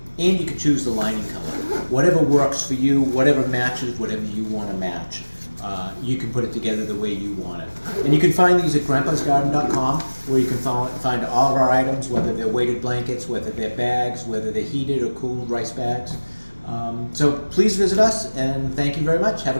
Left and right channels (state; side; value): inverted; both; correlation -1.00